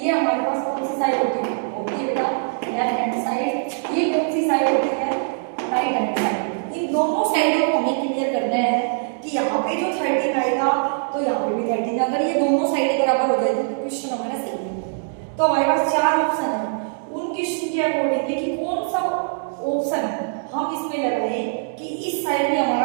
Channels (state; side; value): silent; left; digital silence